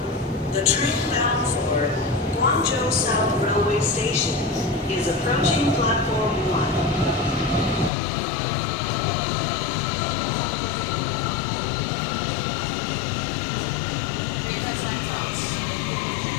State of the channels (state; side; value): drops out; right; at 7.9 s